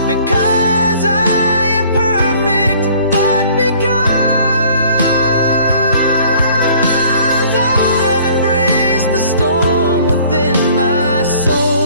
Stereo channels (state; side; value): inverted; both; correlation -0.54